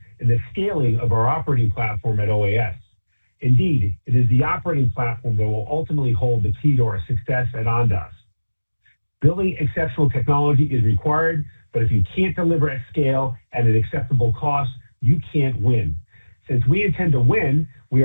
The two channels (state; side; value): inverted; both; correlation -1.00